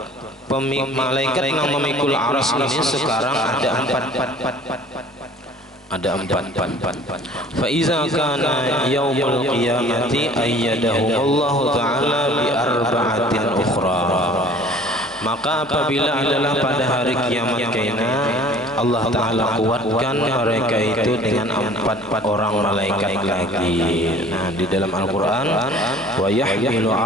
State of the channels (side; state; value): both; normal; correlation 0.49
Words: malaikat yang memikul arsy ini sekarang ada 4. Fa iza kana yaumul qiyamati ayyadahumullahu ta'ala bi arba'atin ukhra, maka apabila adalah pada hari kiamat kena, Allah Ta'ala kuatkan mereka itu dengan 4 orang malaikat lagi. Nah di dalam Al-Quran, wa yahmilu